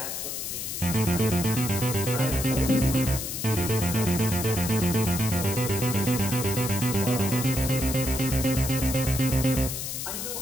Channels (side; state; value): left; noise; hiss, 5 dB below the sound